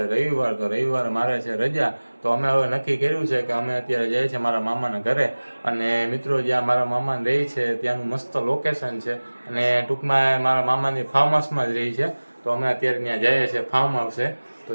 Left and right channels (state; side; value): inverted; both; correlation -1.00